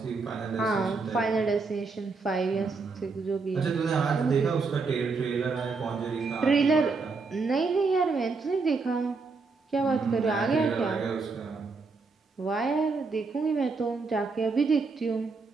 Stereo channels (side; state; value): left; quieter; 4.3 dB